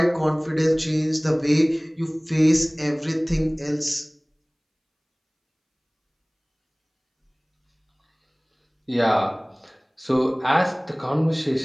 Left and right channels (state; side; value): identical; both; correlation 1.00